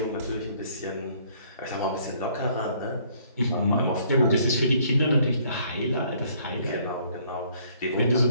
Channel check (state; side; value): inverted; both; correlation -0.62